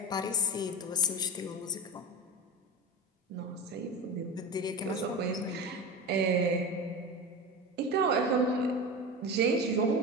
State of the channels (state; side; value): normal; both; correlation 0.27